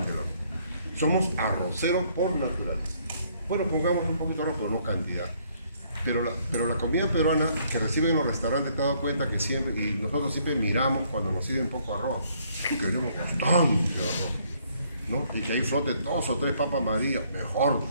arroz. Somos arroceros por naturaleza. Bueno, pongamos un poquito de arroz, pero no cantidad. Pero la comida peruana que reciben en los restaurantes, te has dado cuenta que siempre, y nosotros siempre miramos cuando nos sirven poco arroz, y queremos bastante arroz, ¿no? Y que ahí flote 2 o 3 papas marías, mejor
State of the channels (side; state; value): both; inverted; correlation -0.66